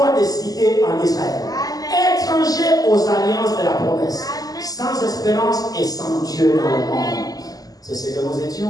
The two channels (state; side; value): late; right; 0.18 ms